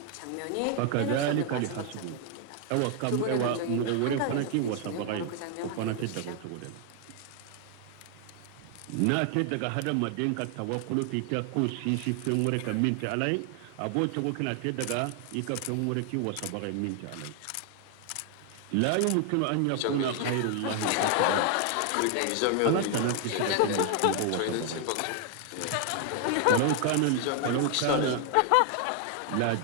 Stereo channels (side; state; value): both; different; correlation 0.00